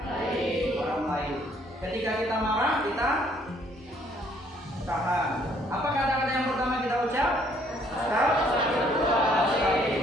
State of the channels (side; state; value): both; normal; correlation 0.64